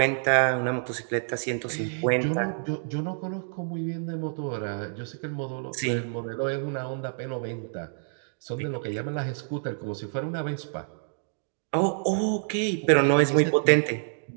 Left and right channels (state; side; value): silent; left; digital silence